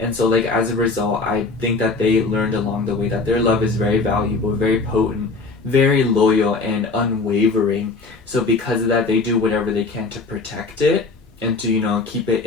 so, like, as a result, I think that they learned along the way that their love is very valuable, very potent, very loyal, and unwavering. So because of that, they do whatever they can to protect it and to, you know, keep it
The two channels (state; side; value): quieter; right; 3.9 dB